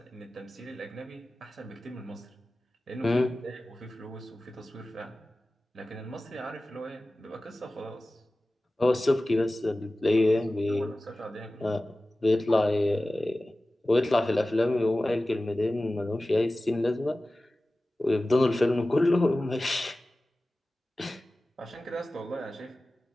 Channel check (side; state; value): both; normal; correlation 0.96